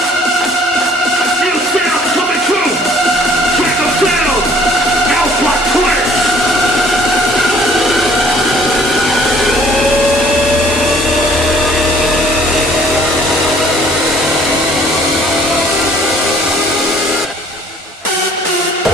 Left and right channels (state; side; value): normal; both; correlation 0.57